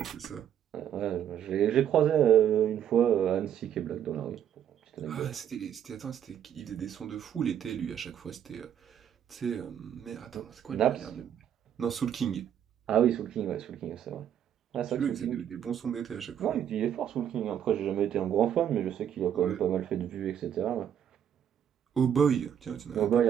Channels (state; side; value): quieter; left; 9.5 dB